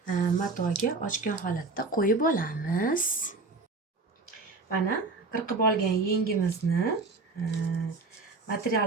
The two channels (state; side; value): quieter; left; 3.8 dB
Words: matoga ochgan holatda qo'yib olamiz. Mana qirqib olgan yengimizni